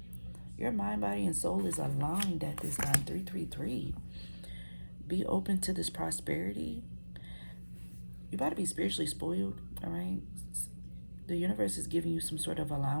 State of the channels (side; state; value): both; inverted; correlation -1.00